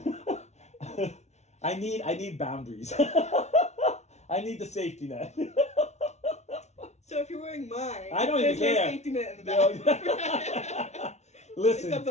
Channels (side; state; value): right; late; 0.32 ms